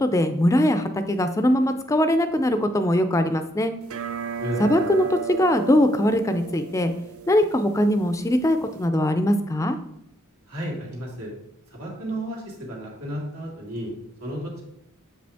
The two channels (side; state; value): both; normal; correlation 0.76